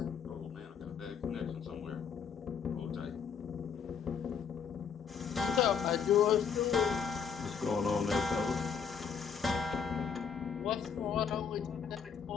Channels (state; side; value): quieter; right; 6.7 dB